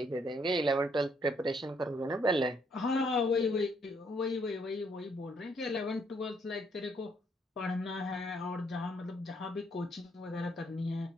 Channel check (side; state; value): both; normal; correlation 0.70